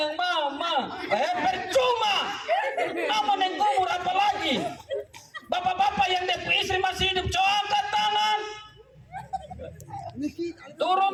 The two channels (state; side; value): identical; both; correlation 1.00